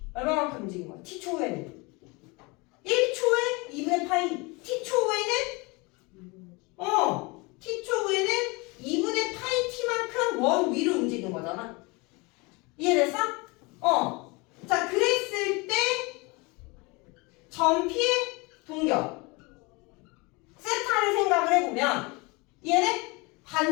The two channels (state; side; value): quieter; right; 26.7 dB